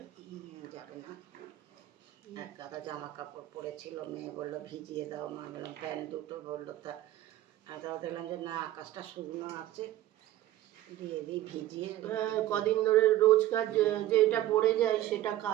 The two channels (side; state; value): left; quieter; 14.3 dB